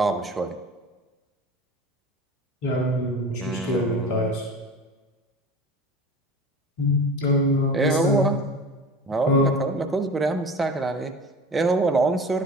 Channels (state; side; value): normal; both; correlation 0.35